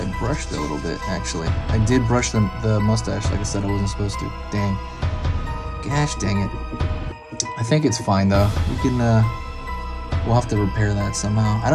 brushed it a little bit, actually. I did brush the mustache, like I said I wasn't supposed to. Dang. Gosh dang it. I think it's fine though. We can, we'll have to repair that somehow. I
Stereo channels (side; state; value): both; identical; correlation 1.00